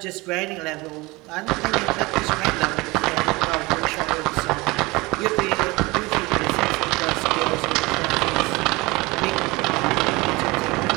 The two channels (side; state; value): left; quieter; 23.0 dB